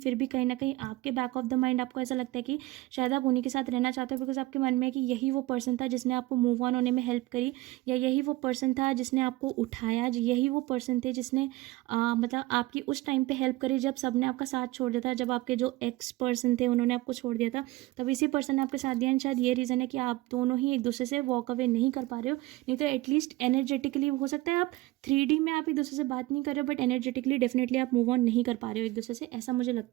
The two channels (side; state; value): left; quieter; 18.9 dB